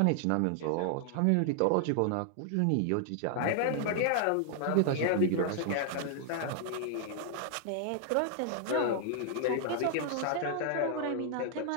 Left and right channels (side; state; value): both; different; correlation 0.00